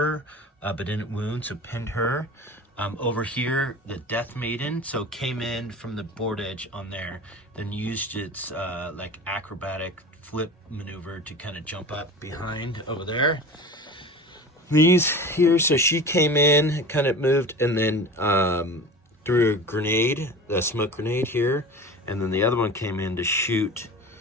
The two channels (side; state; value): both; normal; correlation 0.35